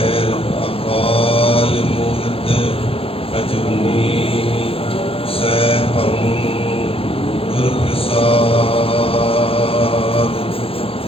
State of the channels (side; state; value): right; late; 0.27 ms